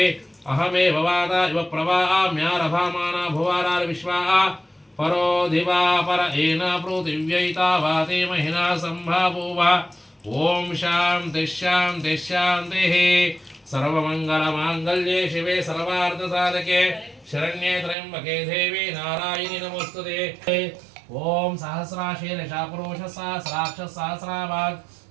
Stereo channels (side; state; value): left; drops out; at 17.9 s